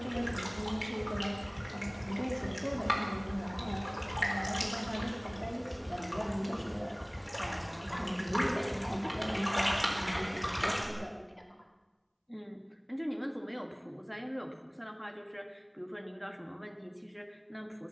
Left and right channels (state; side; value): identical; both; correlation 1.00